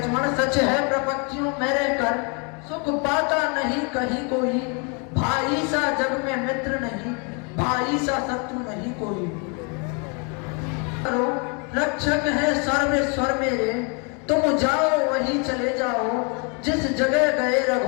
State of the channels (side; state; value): right; quieter; 34.9 dB